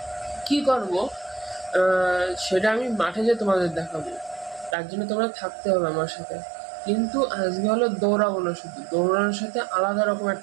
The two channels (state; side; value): drops out; left; at 4.8 s